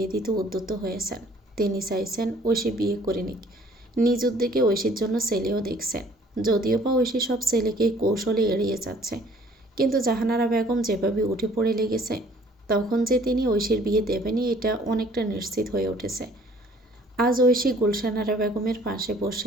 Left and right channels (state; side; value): normal; both; correlation 0.57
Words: দিতে উদ্যত হয়েছেন। তিনি চাইছেন ঐশী বিয়ে করে নিক। নিজ উদ্যোগে ঐশীর জন্য ছেলেও দেখছেন, যদিও বা ঐশী সব ছেলেকে কৌশলে এড়িয়ে যাচ্ছে। কিন্তু জাহানারা বেগম যেভাবে উঠে পড়ে লেগেছে, তখন যে তিনি ঐশীর বিয়ে দেবেনই এটা অনেকটা নিশ্চিত হয়ে উঠেছে। আজ ঐশী গুলশানারা বেগমের পাশে বসে